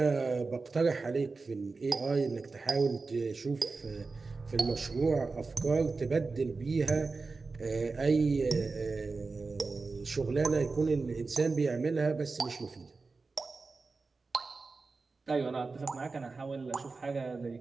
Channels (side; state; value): left; quieter; 4.1 dB